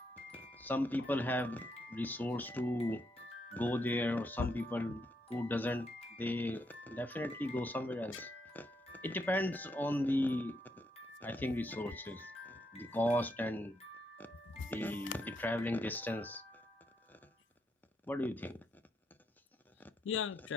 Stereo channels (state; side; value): normal; both; correlation 0.78